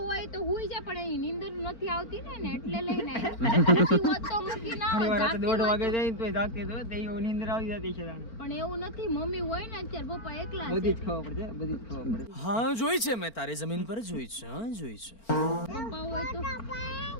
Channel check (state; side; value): late; right; 4.4 ms